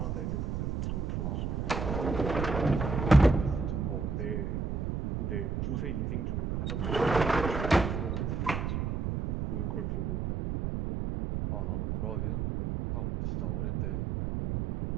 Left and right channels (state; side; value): noise; right; rumble, 1 dB below the sound